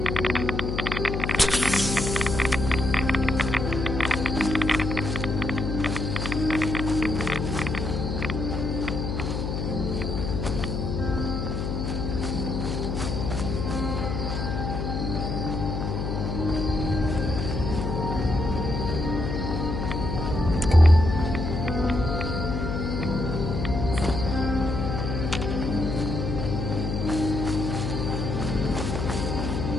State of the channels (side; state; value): left; noise; hum, 2 dB below the sound